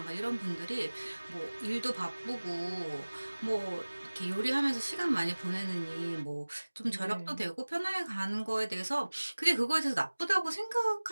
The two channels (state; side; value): inverted; both; correlation -1.00